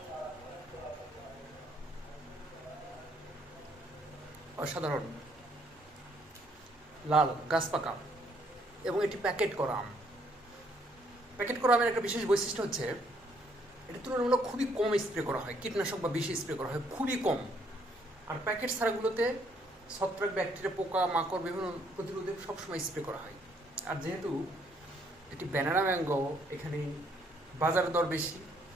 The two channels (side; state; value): both; normal; correlation 0.68